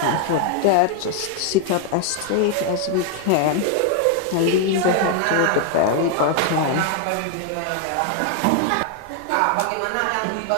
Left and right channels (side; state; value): both; different; correlation 0.00